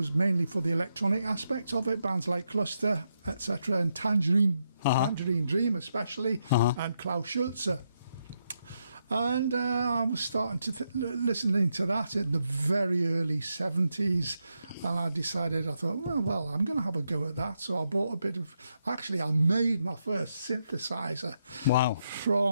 mainly for the electronic aspect of it, bands like Cluster, etc., and Tangerine Dream especially, and Klaus Schulze. And I was starting to listening to that in the very early 70s, and I decided, I thought, well, I'm going to have a go at that. So I bought a bit of, actually I made my first synthesizer. Wow.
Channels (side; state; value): both; inverted; correlation -0.82